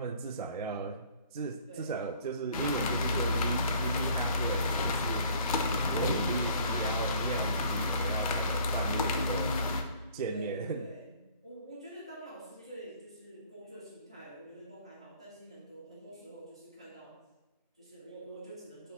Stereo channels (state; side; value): inverted; both; correlation -0.54